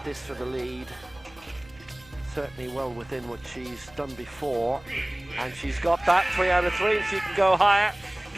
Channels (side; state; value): right; noise; hum, 25 dB below the sound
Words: this for the lead. Certainly well within what she's done before. And she's got that 3 out of 3, and she can go higher.